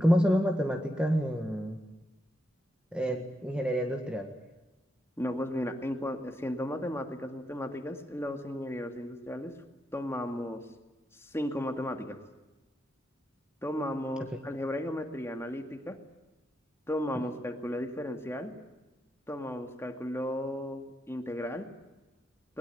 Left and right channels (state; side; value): normal; both; correlation 0.83